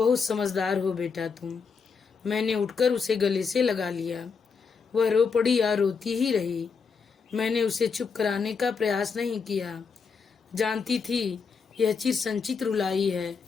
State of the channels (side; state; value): right; quieter; 5.5 dB